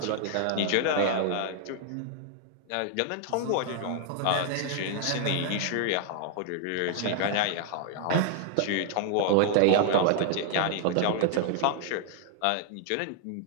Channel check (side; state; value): both; different; correlation 0.00